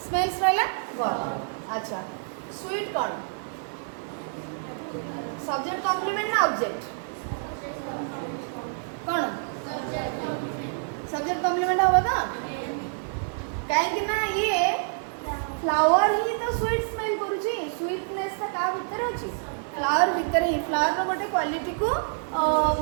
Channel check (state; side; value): silent; left; digital silence